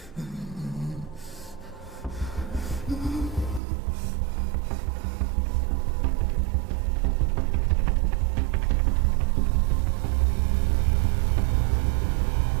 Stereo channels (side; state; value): left; drops out; at 3.6 s